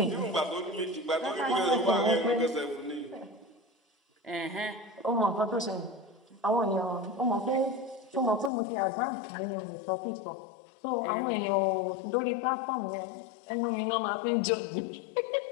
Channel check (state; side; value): drops out; right; at 8.5 s